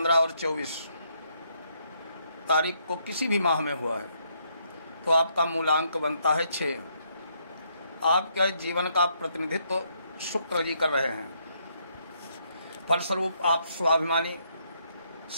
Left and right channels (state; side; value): inverted; both; correlation -0.73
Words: और 24 तारीख को किसी भी माह में हुआ है तो आपका मूलांक बनता है 6। आपके जीवन का प्रतिनिधित्व शुक्र जी कर रहे हैं। फलस्वरूप आप स्वाभिमानी,